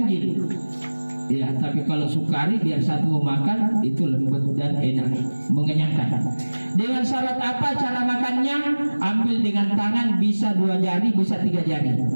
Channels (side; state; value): both; inverted; correlation -1.00